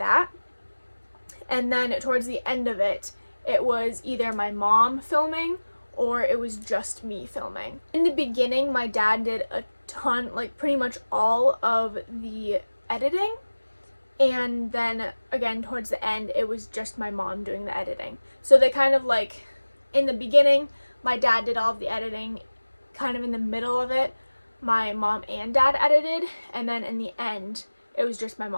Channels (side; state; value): both; inverted; correlation -1.00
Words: And then towards the end of it, it was either my mom filming or it was just me filming. In the beginning, my dad did a ton, like pretty much all of the editing. And then again, towards the end, it was just my mom doing the editing. So they kind of like, in the beginning, my dad did all of the editing. Kind of in the middle of it, my mom and dad edited. And then in the end, it was just my